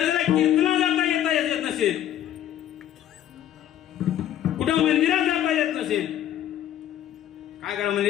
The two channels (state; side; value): quieter; right; 11.5 dB